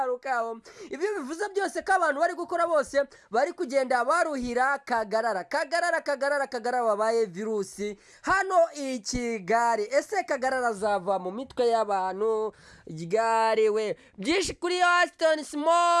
Ibyo bivuze byose ko abantu bari gukora bose bari kugenda baruhira Kagarara wabaye virusi hano i Kigali. Ese Kagarara azava mu mitwe y'abantu ryari we? Byinshi kuri Ashton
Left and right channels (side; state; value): both; identical; correlation 1.00